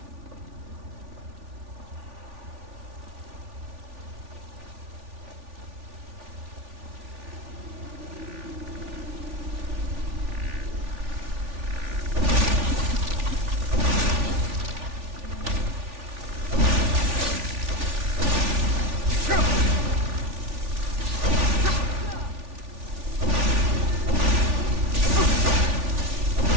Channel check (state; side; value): late; left; 3.4 ms